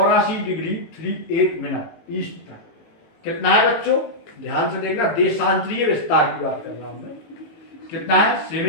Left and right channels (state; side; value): late; right; 18 ms